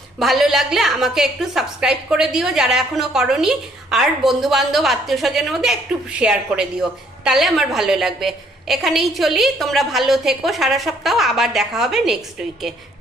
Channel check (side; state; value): both; normal; correlation 0.64